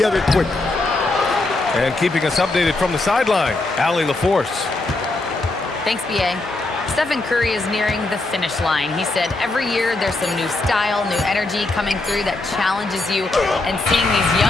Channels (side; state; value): right; quieter; 3.0 dB